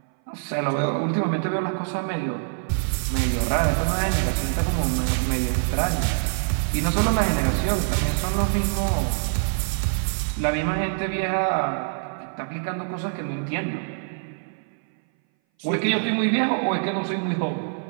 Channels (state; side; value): silent; left; 59 dB below the other